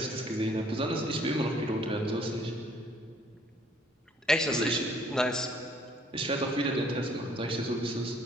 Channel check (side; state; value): both; normal; correlation 0.61